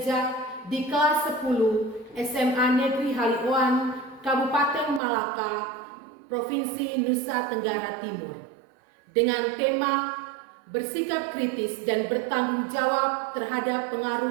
di kelas 10 SMA Negeri Halioan, Kabupaten Malaka, Provinsi Nusa Tenggara Timur, dengan tema bersikap kritis dan bertanggung jawab terhadap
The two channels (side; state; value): left; drops out; at 5.0 s